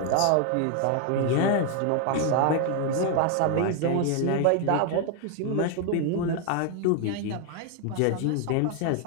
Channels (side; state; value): both; different; correlation 0.01